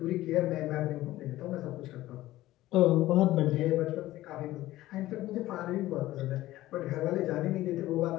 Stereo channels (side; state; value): right; quieter; 15.9 dB